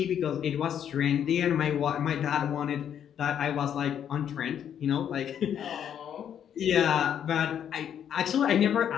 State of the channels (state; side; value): quieter; right; 9.2 dB